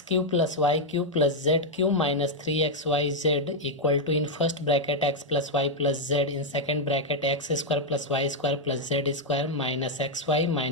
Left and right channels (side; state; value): both; normal; correlation -0.01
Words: cube plus y cube plus z cube minus 3xyz equal to, in first bracket x plus y plus z, in second bracket x square plus y square plus z square minus xy